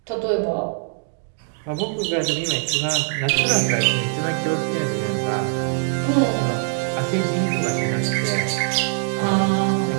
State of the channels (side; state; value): left; silent; digital silence